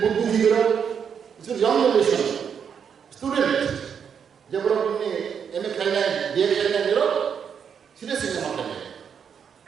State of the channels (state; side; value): quieter; left; 7.3 dB